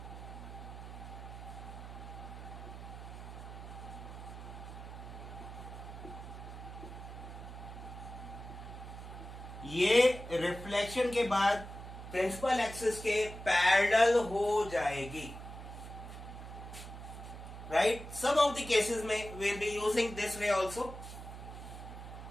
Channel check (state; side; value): noise; right; hum, 11 dB below the sound